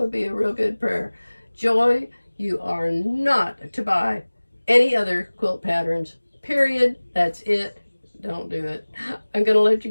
be a real good prayer. Joy, you are not to buy any other quilt patterns. Period. That's it. Don't do it. I'm going to let you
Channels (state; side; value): inverted; both; correlation -1.00